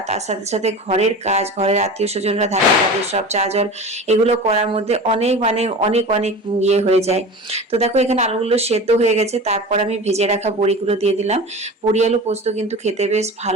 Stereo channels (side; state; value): both; normal; correlation 0.33